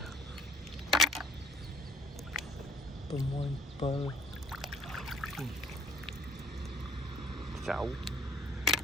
tôi mua bơ 6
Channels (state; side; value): normal; both; correlation 0.56